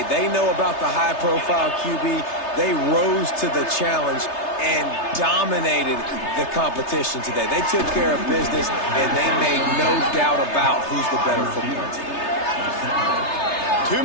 They know about the high-profile QB. They rose to the challenge and dominated the competition today. They took care of business, and they made no doubt about who's the better football team. 2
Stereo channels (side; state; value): right; late; 3.3 ms